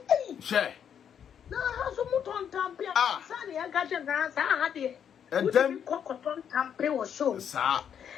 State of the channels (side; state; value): right; quieter; 8.4 dB